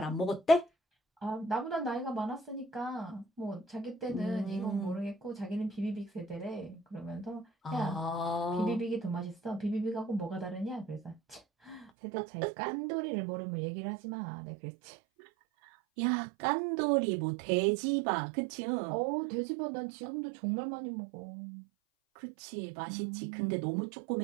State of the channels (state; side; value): drops out; left; at 11.9 s